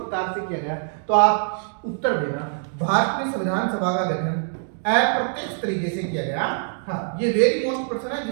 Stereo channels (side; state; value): left; silent; 63 dB below the other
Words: से किया गया, तो आप उत्तर देना भारत में संविधान सभा का गठन अप्रत्यक्ष तरीके से किया गया। हाँ, ये वेरी मोस्ट प्रश्न है